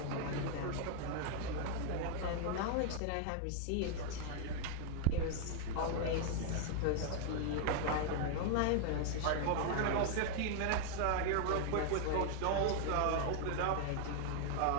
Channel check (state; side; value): different; both; correlation -0.01